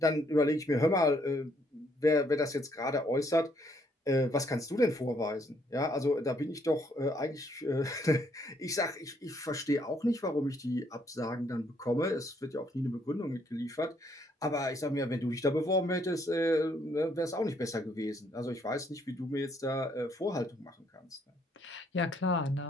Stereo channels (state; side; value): normal; both; correlation 0.69